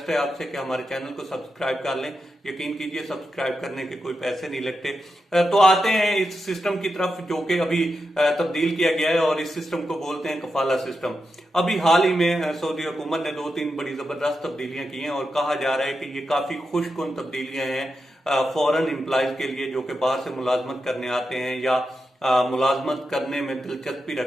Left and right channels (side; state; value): both; normal; correlation 0.88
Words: है आपसे कि हमारे चैनल को सब्सक्राइब कर लें। यकीन कीजिए सब्सक्राइब करने के कोई पैसे नहीं लगते। तो आते हैं इस सिस्टम की तरफ जो कि अभी तब्दील किया गया है और इस सिस्टम को बोलते हैं कफाला सिस्टम। अभी हाल ही में सऊदी हुकूमत ने 2-3 बड़ी जबरदस्त तब्दीलियां की हैं और कहा जा रहा है कि ये काफी खुशकुन तब्दीलियां हैं फॉरेन एम्प्लॉयज के लिए जो कि बाहर से मुलाजमत करने आते हैं या मुलाजमत करने में दिलचस्पी